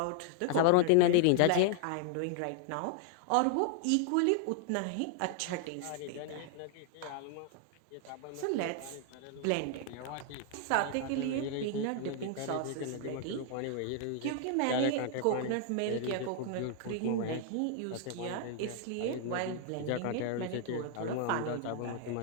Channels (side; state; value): both; different; correlation 0.00